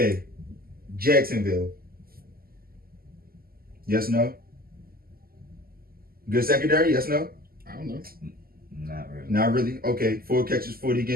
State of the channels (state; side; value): late; left; 0.43 ms